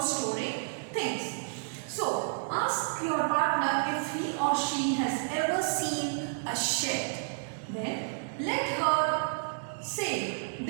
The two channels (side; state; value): left; silent; digital silence